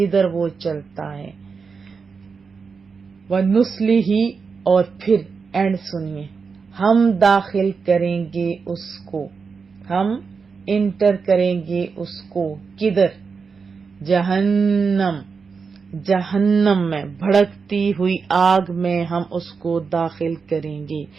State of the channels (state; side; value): quieter; left; 5.2 dB